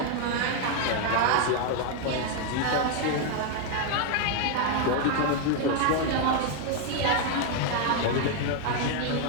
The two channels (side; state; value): both; different; correlation 0.00